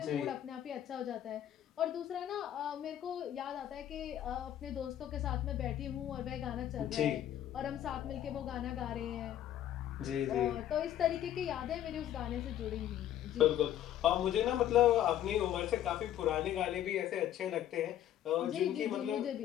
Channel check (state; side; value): quieter; right; 11.5 dB